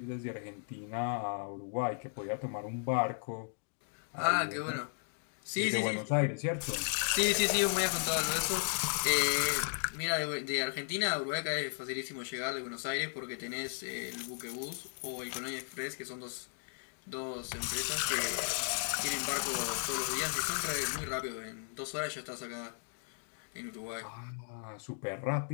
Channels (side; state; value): right; silent; digital silence